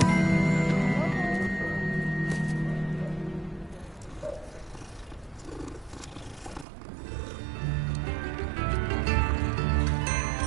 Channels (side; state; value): left; drops out; at 6.7 s